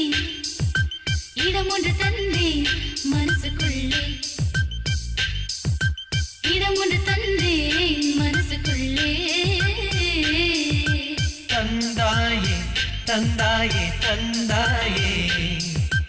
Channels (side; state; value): both; identical; correlation 1.00